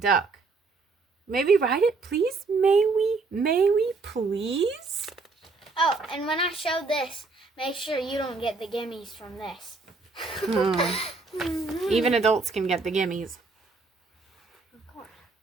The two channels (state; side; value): quieter; left; 4.0 dB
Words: May we ride it, please? May we, please? Oh, and when I show this, make sure you don't get the gimmies from this. Even adults can get the gimmies. Of course.